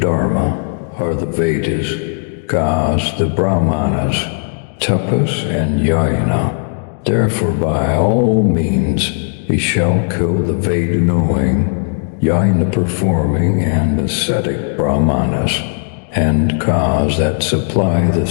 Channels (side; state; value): right; silent; digital silence